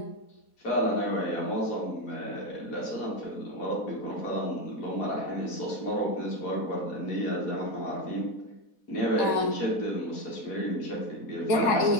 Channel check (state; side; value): late; right; 4.1 ms